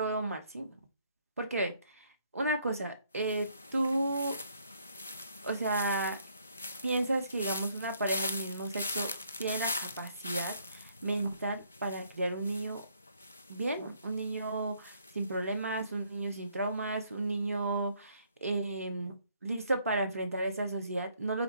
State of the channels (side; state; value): both; inverted; correlation -0.67